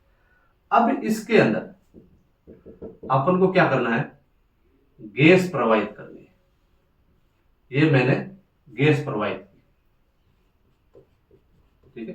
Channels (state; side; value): identical; both; correlation 1.00